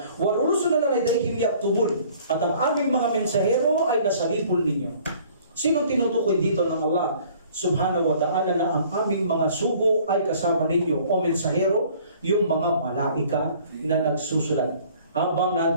وَرُسُلَنَا لَدَيْهِمْ يَكْتُبُونَ. At ang aming mga mensahero ay nasa lipol ninyo. Sinong tinutukoy dito ng Allah Subhanahu wa ta'ala na ang aming mga sugo ay kasama ninyo o mensahero? Yung mga malaika na nagsusulat. Habang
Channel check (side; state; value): both; inverted; correlation -0.54